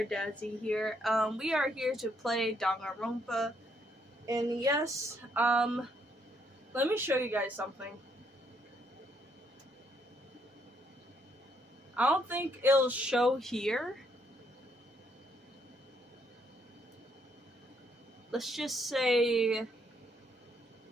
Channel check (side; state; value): both; normal; correlation 0.72